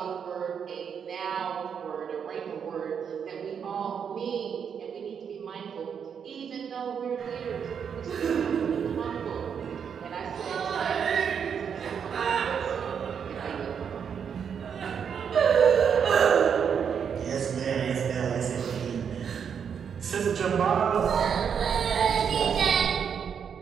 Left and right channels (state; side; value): quieter; left; 7.3 dB